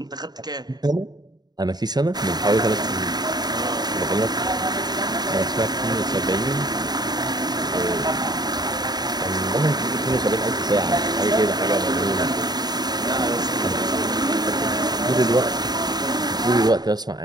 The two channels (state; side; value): late; left; 0.20 ms